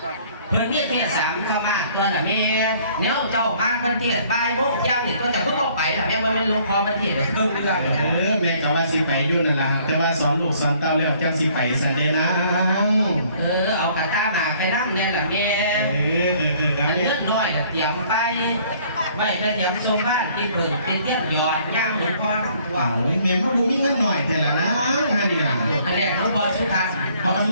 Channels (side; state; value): both; inverted; correlation -0.59